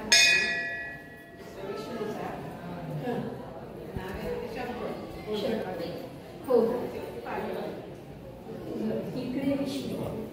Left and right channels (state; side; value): identical; both; correlation 1.00